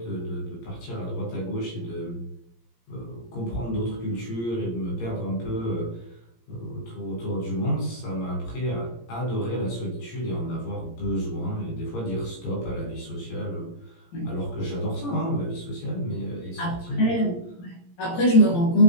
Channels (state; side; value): late; right; 17 ms